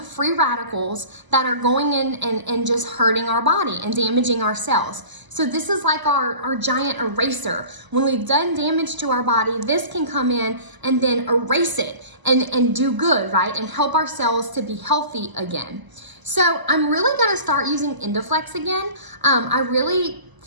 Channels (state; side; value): late; left; 1.0 ms